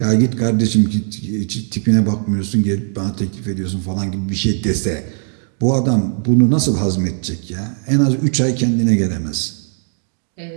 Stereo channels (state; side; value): silent; left; 67 dB below the other